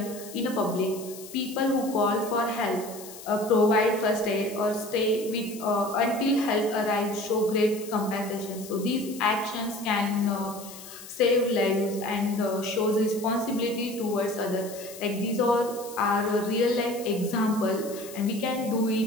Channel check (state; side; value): noise; left; hiss, 15 dB below the sound